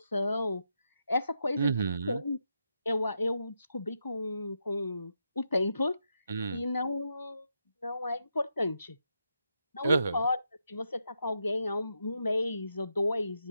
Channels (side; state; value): both; inverted; correlation -0.83